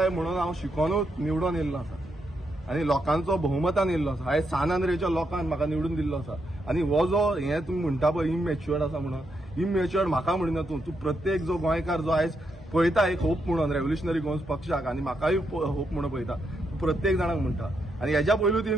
म्हणून हांव शिकोनूच निवडून येयल्लो आसा आनी लोकांचो बहुमतान येयल्लो आसा. आयज सानंद्रेच्या लोकांक म्हाका निवडून दिल्लो आसा आनी हो जो हें तुमी म्हणटा पळय इमॅच्युअर्ड आसा म्हणून इमॅच्युअर्ड म्हाका म्हणिना तूं प्रत्येक जो गोंयकार जो आयज पळयता एक होप म्हणून रेव्होल्युशनरी गोंस पक्षाक आनी म्हाकाय होप म्हणून पळयता प्रत्येक जाणांक म्हणटा. आनी हेच्या पयलू ती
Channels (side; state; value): both; normal; correlation 0.81